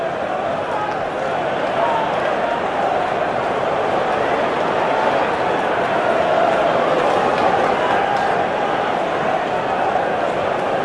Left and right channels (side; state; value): both; identical; correlation 1.00